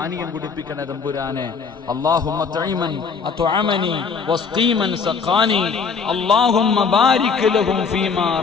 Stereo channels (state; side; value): quieter; right; 5.5 dB